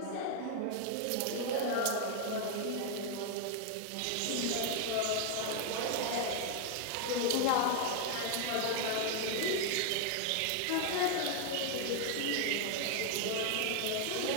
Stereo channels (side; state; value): both; different; correlation 0.00